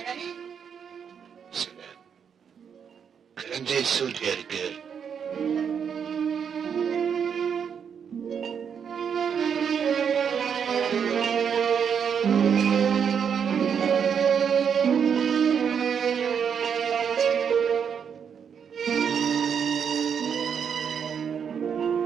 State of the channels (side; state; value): left; quieter; 7.3 dB